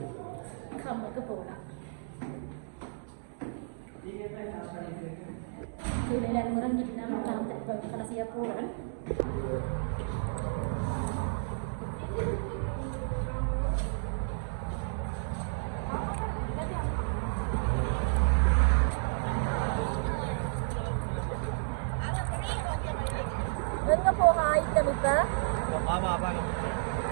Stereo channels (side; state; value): left; silent; digital silence